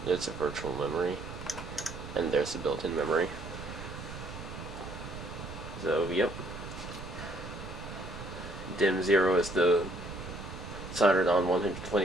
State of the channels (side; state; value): right; noise; rumble, 11 dB below the sound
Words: There's a virtual memory, and there's a built-in memory. So, yep. DIMM 0 is the soldered on